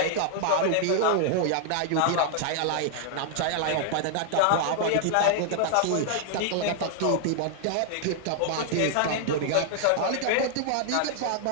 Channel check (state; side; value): different; both; correlation -0.01